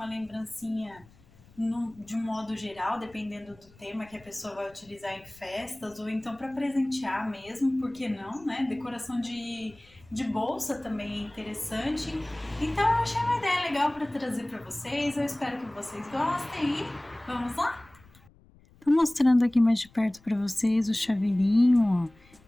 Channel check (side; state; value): left; noise; rumble, 27 dB below the sound